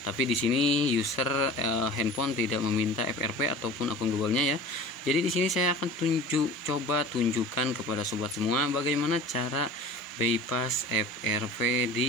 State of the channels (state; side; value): normal; both; correlation 0.39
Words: Tapi di sini user handphone tidak meminta FRP ataupun akun Google-nya ya. Jadi di sini saya akan coba tunjukkan kepada sobat semua bagaimana cara bypass FRP